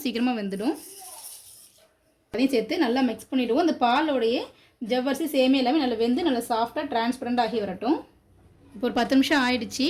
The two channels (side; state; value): both; identical; correlation 1.00